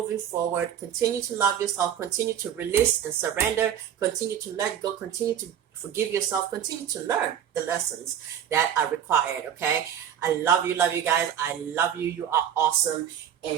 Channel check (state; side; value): quieter; left; 9.4 dB